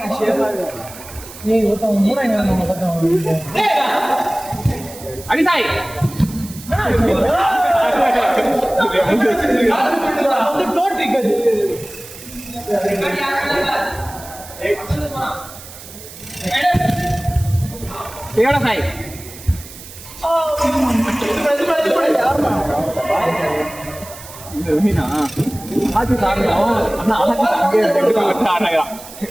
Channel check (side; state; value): right; noise; hiss, 16 dB below the sound